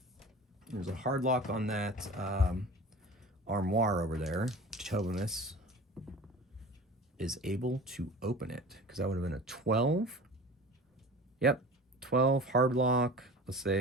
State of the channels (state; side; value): normal; both; correlation 0.38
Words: There's a hard lock on that armoire over there. Tobamus is able to open it because that would have been a 12. Yep, 12 hard lock. Let's